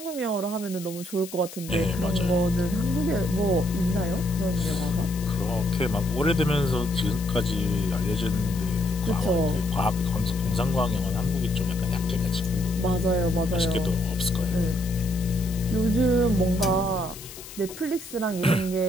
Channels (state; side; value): noise; left; hiss, 15 dB below the sound